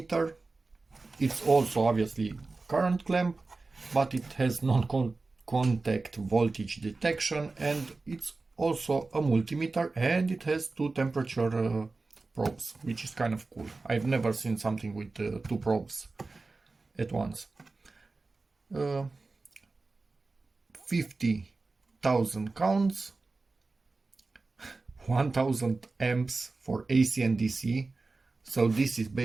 It's also obviously current clamp, but it has non-contact voltage detection, and it's also a multimeter, and it has two temperature probes, which is kind of cool. I've never seen something with two probes at once. 50,000 counts, 1000 amps for AC and DC. So this is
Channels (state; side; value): quieter; left; 3.7 dB